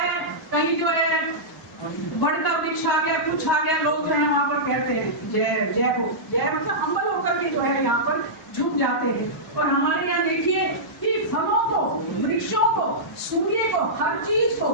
कहीं जो है बड़ का वृक्ष आ गया, कुछ आ गया, लोग जो है वहाँ पर कहते हैं जय जय हो, जय मतलब हम्बल होकर के जो है यहाँ पर झुक जाते हैं। और हमारे यहाँ देखिए सूर्य को, हर चीज को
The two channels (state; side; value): normal; both; correlation -0.14